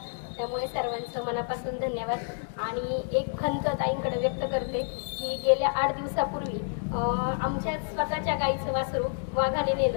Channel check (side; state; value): right; silent; 59 dB below the other